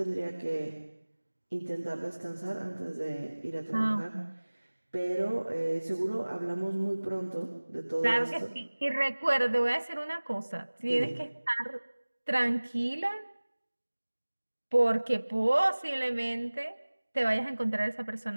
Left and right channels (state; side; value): inverted; both; correlation -1.00